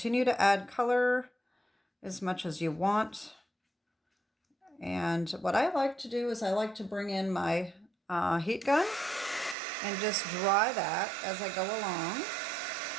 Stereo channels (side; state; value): left; drops out; at 9.6 s